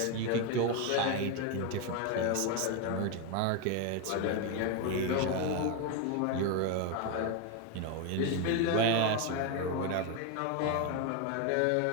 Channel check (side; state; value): both; different; correlation 0.02